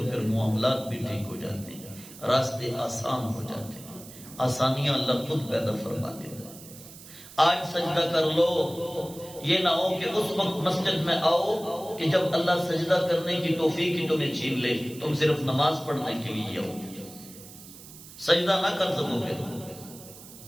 پھر معاملات بھی ٹھیک ہو جاتے ہیں، راستے آسان ہو جاتے ہیں، آسانیاں اللہ خود پیدا فرما دیتا ہے. آج سجدہ کر لو. یہ نہ ہو کہ اس وقت مسجد میں آؤ کہ جب اللہ سجدہ کرنے کی توفیق ہی تمہیں چھین لے، تم صرف نماز پڑھنے کے لیے آؤ، سجدہ نہ کر سکو،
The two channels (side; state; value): right; noise; hiss, 17 dB below the sound